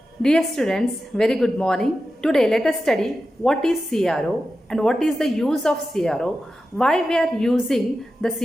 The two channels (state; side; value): normal; both; correlation 0.92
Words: Dear students, very good morning. Today let us study what is CRO and what is the use of CRO, why we are using the